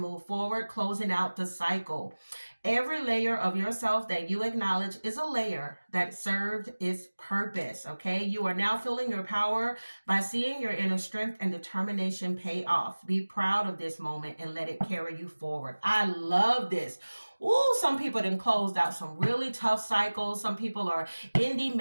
forward, closing out the cycle. Every layer of yourself that you acknowledge is a layer that served its purpose, okay? You are now feeling your power by seeing your inner strength and determination pay off. Be proud of this moment and let it carry you forward. I love this. Ooh, some people done closed out some really tough cycles. Some people are ending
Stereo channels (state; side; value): inverted; both; correlation -1.00